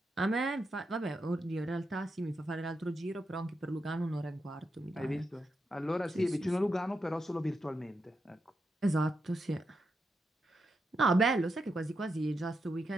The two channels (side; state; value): both; normal; correlation 0.85